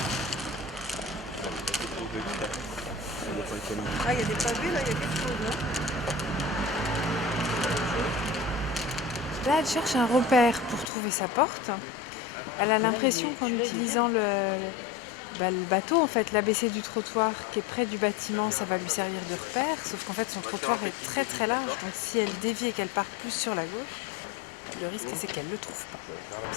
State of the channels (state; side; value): drops out; right; at 10.9 s